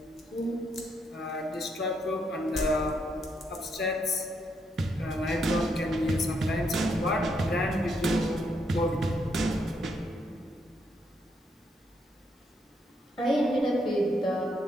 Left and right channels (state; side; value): normal; both; correlation 0.76